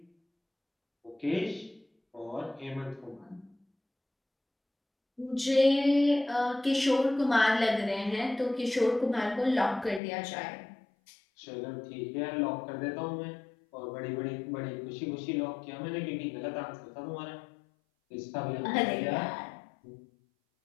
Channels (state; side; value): drops out; right; at 10.0 s